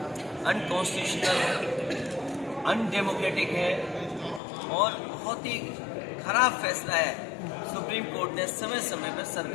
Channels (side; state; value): right; drops out; at 4.4 s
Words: अनकॉन्स्टिट्यूशनल, अनडेमोक्रेटिक है और बहुत ही खराब फैसला है। सुप्रीम कोर्ट ने समय समय पर